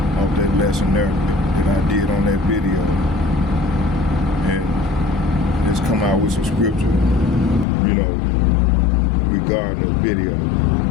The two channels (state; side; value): drops out; right; at 7.7 s